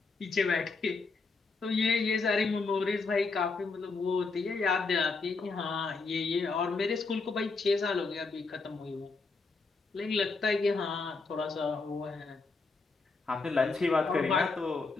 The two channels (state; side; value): quieter; right; 4.1 dB